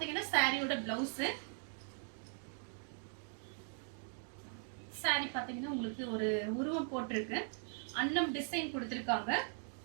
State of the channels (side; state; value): left; silent; 51 dB below the other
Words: சாரியோட பிளவுஸ். சாரி பாத்தீங்கன்னா உங்களுக்கு ஒரு உருவம் போட்டிருக்கு. அன்னம் டிசைன் கொடுத்திருக்காங்க.